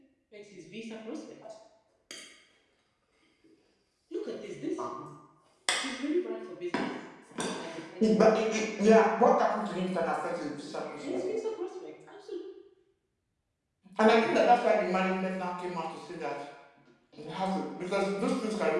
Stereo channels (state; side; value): identical; both; correlation 1.00